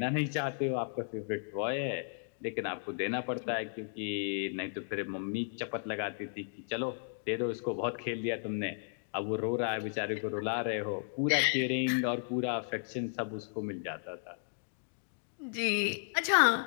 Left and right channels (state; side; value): silent; right; digital silence